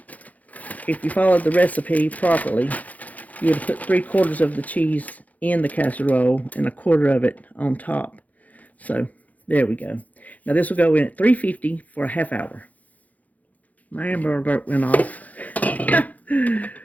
If you followed the recipe properly, you would have put 3/4 of the cheese in the casserole and 1/4 of it on top. So there we go. Now this will go in at 350 for a half hour. My Amber Alert went off.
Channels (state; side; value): late; right; 0.076 ms